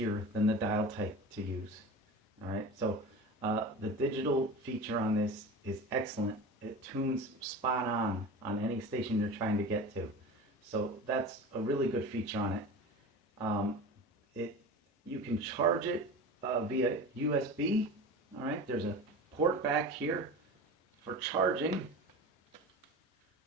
than the dial type to use. All right, so the digital feature on this is excellent. It tunes spot on any station you're trying to get to. So that's a really good feature on it. You can charge it via USB. All right, there's a port back here for charging.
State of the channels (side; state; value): both; normal; correlation 0.32